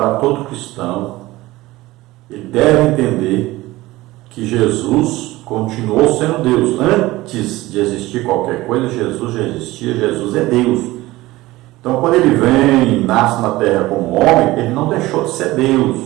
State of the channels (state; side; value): quieter; left; 18.6 dB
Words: todo cristão. Ele deve entender que Jesus continuou sendo Deus. Antes de existir qualquer coisa, Jesus já existia, Jesus é Deus. Então quando ele vem e nasce na terra como homem, ele não deixou de ser Deus.